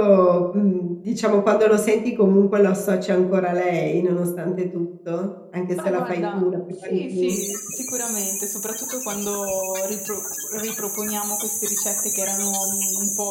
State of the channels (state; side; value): identical; both; correlation 1.00